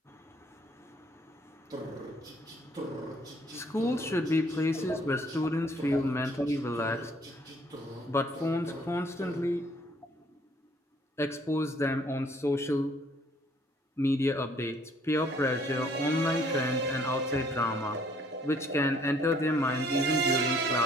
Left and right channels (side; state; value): both; normal; correlation 0.62